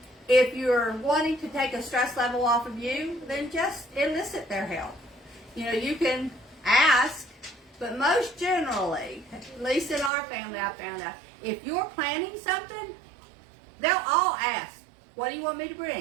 wanting to take a stress level off of you, then just elicit their help. You know, you can ask, but most generally, at least in our family, I found out, if you're planning something, they'll all ask, what do you want me to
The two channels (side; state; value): left; drops out; at 10.1 s